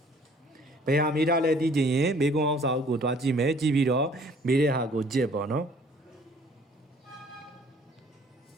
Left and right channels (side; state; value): both; normal; correlation 0.57